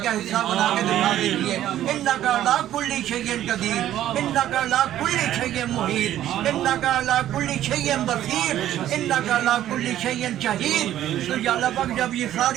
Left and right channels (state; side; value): quieter; left; 12.4 dB